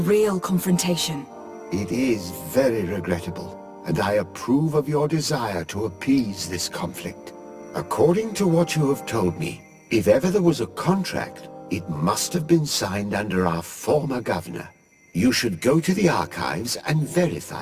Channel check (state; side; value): identical; both; correlation 1.00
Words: confrontation. It is very regrettable, and I approve of your desire to appease this conflict. According to what you have told me, if ever there was a contract, it must have been signed under our former governor. You should go to the archives and